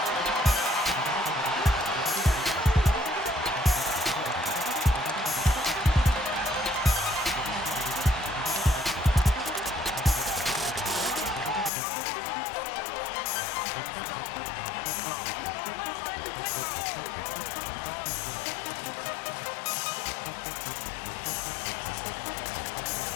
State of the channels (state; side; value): drops out; right; at 11.7 s